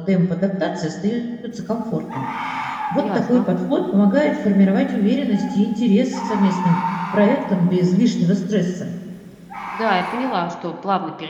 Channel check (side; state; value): both; identical; correlation 1.00